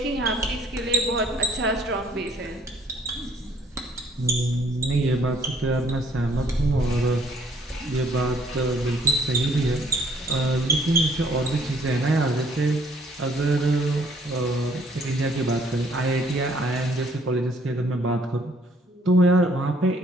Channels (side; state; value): both; normal; correlation 0.62